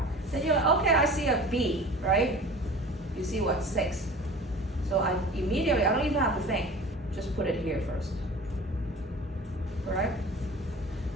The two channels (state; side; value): normal; both; correlation 0.40